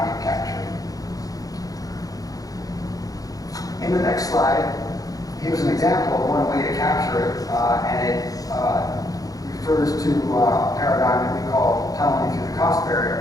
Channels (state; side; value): late; right; 0.17 ms